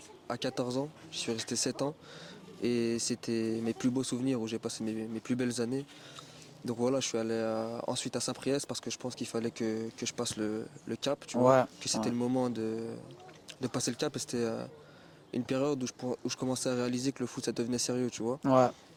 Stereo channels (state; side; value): identical; both; correlation 1.00